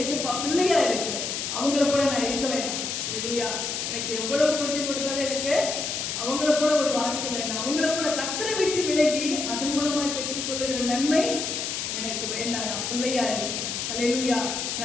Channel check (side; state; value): left; noise; hiss, 3 dB below the sound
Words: பிள்ளையா இருக்கிறேன். அவங்கள போல நான் இருக்க வேண்டாம். ஹல்லேலூயா. எனக்கு எவ்வளவு கொட்டி கொடுத்தாலும் எனக்கு அவங்கள போல ஒரு வாழ்க்கை வேண்டாம். அவங்கள போல கர்த்தரை விட்டு விலகி அதன் மூலமாய் பெற்றுக்கொள்ளுகிற நன்மை எனக்கு வேண்டாம். நான் பிள்ளையா இருக்கேன். ஹல்லேலூயா.